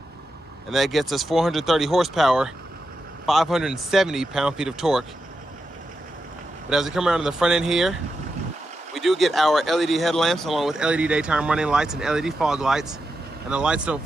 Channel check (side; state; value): both; normal; correlation 0.88